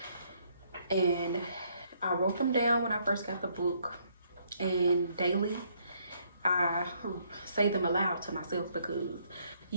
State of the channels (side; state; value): both; inverted; correlation -0.69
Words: and I wrote them down when I first got the book, and daily I say them aloud to myself because